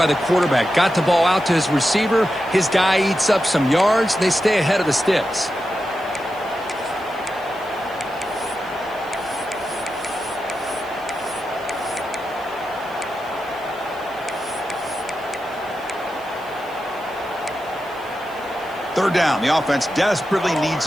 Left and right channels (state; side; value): noise; right; hiss, 25 dB below the sound